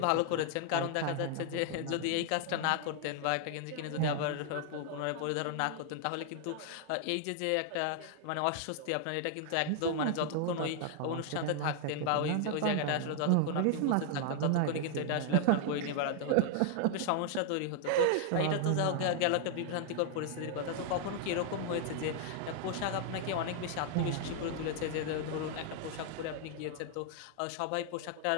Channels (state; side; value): different; both; correlation 0.00